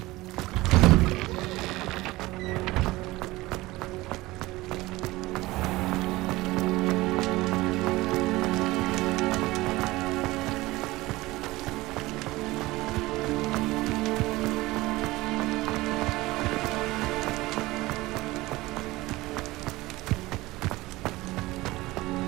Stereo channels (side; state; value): left; quieter; 19.6 dB